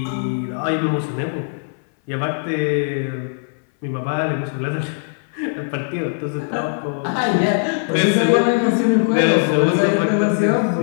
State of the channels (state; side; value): silent; right; 60 dB below the other